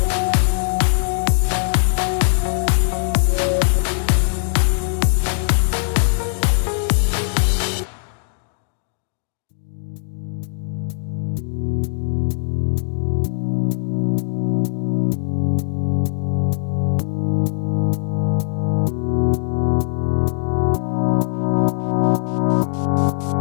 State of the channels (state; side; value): silent; right; digital silence